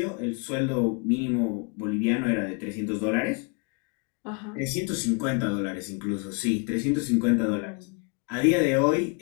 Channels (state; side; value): quieter; right; 34.3 dB